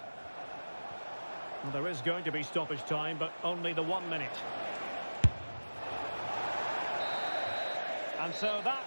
Well, there is going to be stoppage time, but only the 1 minute. And so that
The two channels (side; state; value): both; inverted; correlation -1.00